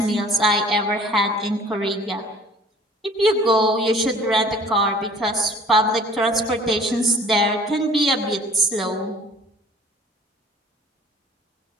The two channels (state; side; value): normal; both; correlation 0.50